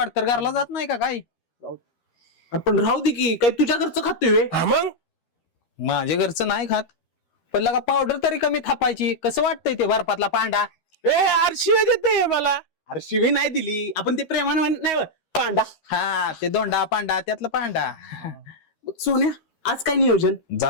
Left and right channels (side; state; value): right; late; 13 ms